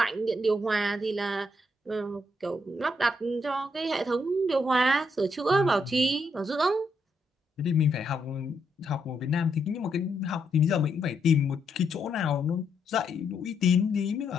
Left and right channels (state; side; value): normal; both; correlation 0.77